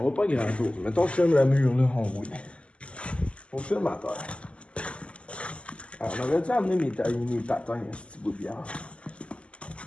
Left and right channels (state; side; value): late; right; 0.057 ms